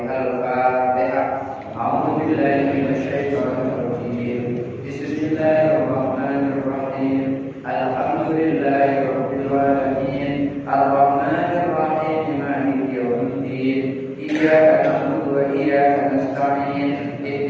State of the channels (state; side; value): identical; both; correlation 1.00